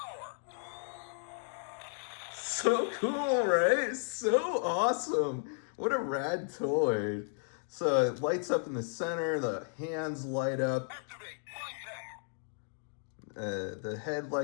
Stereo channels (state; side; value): silent; right; 55 dB below the other